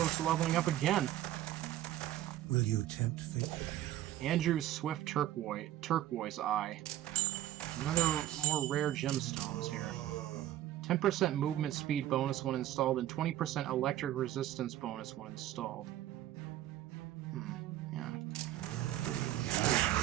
to leveling up again. Will you tempt fate? Andrew's Swift Turquoise Eye. Another more rare gemstones here. 10% movement speed bonus when installed, and 20% electric resistance bonus when installed. Yeah.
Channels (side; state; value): left; quieter; 13.5 dB